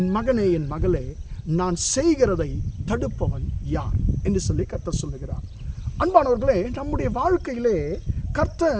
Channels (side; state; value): both; identical; correlation 1.00